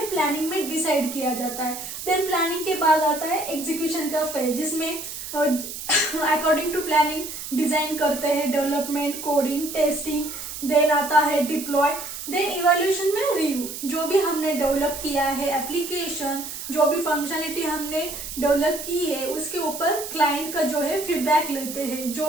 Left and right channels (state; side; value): noise; right; hiss, 9 dB below the sound